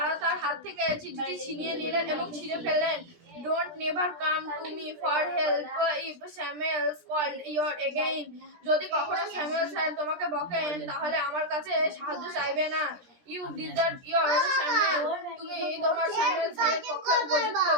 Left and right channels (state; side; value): late; left; 17 ms